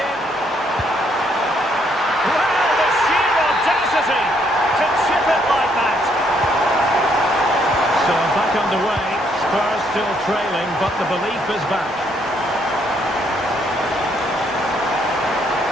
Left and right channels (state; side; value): normal; both; correlation 0.71